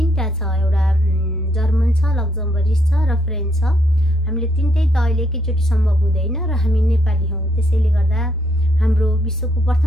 छ, एउटा जर्मन छ, लक्जमबर्गिस छ र फ्रेन्च छ। हामीले तीनटै त अहिले एकैचोटी सम्भव हुँदैन र हामी नेपाली हौं, त्यसैले गर्दा हाम्रो विश्वको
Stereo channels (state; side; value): noise; left; rumble, 19 dB below the sound